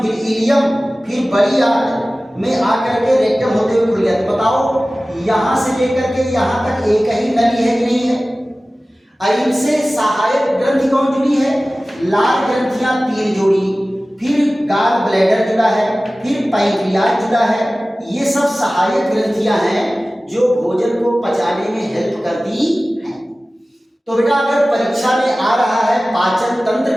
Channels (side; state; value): both; normal; correlation 0.97